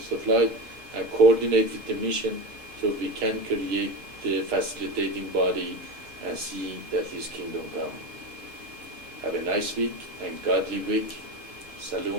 of light, and coordinate with the mission so we can create the facilitating body and see that His kingdom come. Have a nice week and godly week.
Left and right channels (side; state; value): left; late; 6.2 ms